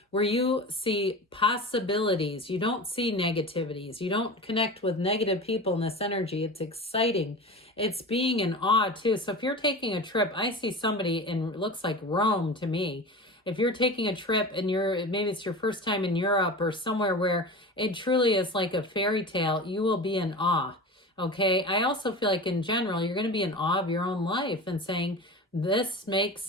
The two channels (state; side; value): normal; both; correlation 0.31